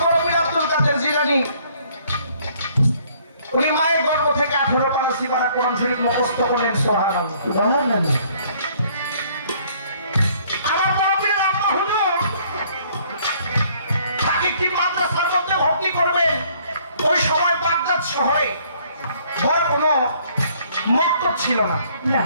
বড় পীর আব্দুল কাদের জিলানী উনি মায়ের গর্ভ থেকে 18 পারা সিপারা কোরআন শরীফ মুখস্থ করলেন। সুবহানাল্লাহ সুবহানাল্লাহ। আমার বড় পীর আব্বা হুজুর তাকে কি মাদ্রাসার মধ্যে ভর্তি করবেন। ওই সময় বাগদাদ শহরে বড় কোনো মক্তব ছিল না।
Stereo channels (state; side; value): inverted; both; correlation -0.61